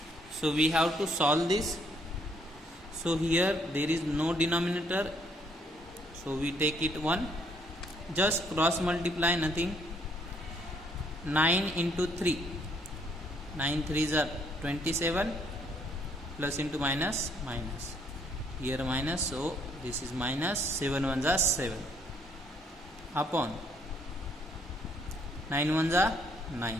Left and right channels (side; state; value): both; normal; correlation 0.67